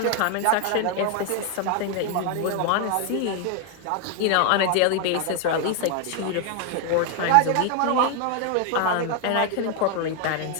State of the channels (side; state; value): both; different; correlation 0.00